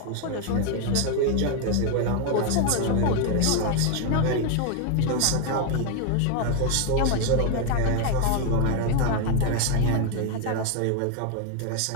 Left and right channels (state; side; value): different; both; correlation 0.01